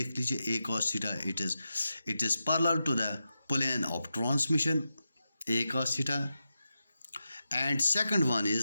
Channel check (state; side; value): inverted; both; correlation -0.90